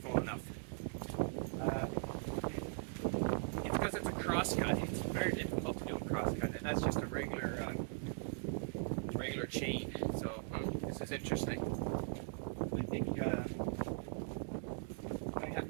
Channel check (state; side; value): quieter; left; 37.6 dB